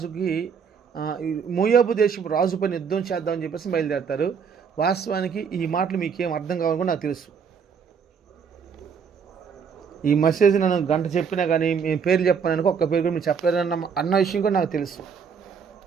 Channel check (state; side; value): quieter; left; 6.5 dB